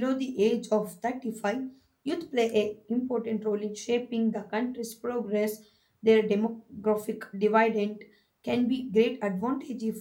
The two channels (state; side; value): identical; both; correlation 1.00